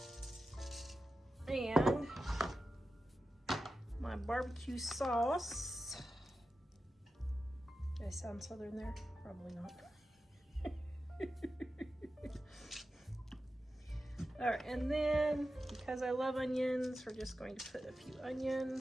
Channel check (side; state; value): both; normal; correlation 0.92